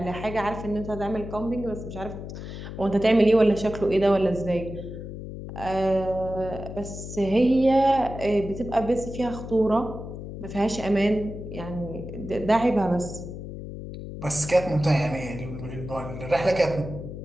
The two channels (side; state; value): left; noise; hum, 9 dB below the sound